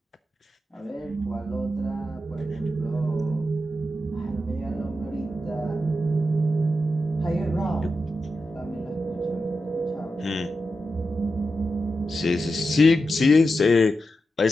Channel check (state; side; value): normal; both; correlation 0.89